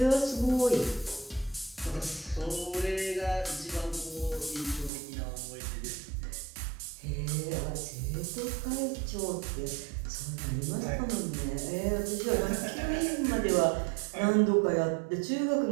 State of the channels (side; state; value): left; drops out; at 4.9 s